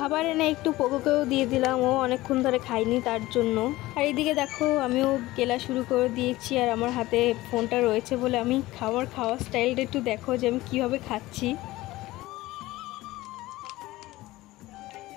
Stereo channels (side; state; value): right; quieter; 18.1 dB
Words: এনে একটু পোকোকেও দিয়ে দিলাম, ও অনেকক্ষণ ধরে খাইনি তার জন্য। আর এইদিকে দেখো আমিও গেলা শুরু করে দিয়েছি। আর আমার হাতে ফোনটা রয়েছে বলে আমি খাওয়ার স্টাইলটা একটু দেখো যে আমি কীভাবে খাচ্ছি।